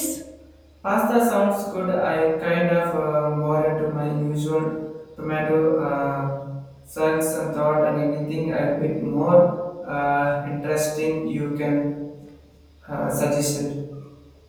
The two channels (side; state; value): both; identical; correlation 1.00